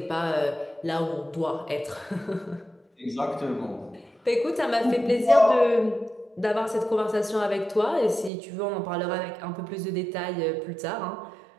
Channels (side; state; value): left; drops out; at 8.3 s